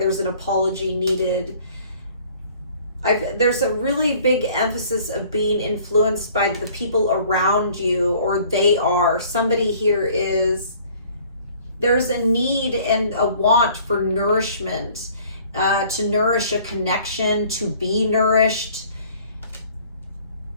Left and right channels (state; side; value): inverted; both; correlation -0.54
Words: an apology needed. There's a really big emphasis of being influenced by the people around you, or they are. Somebody here is, there's a need and a want for nourishment, to nourish a connection, to be nourished.